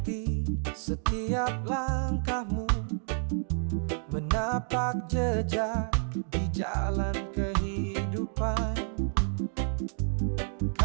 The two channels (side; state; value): left; silent; 57 dB below the other